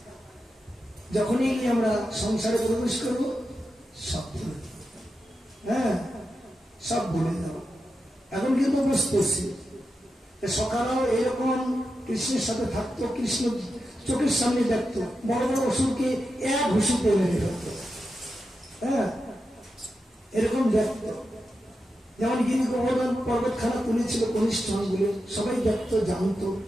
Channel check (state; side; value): normal; both; correlation 0.89